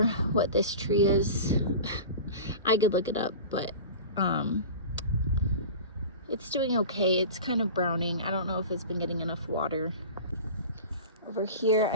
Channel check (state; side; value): inverted; both; correlation -0.34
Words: what this tree is. I could look it up, but it's doing okay. It's kind of browning. I don't know if it's been getting enough water. Over here,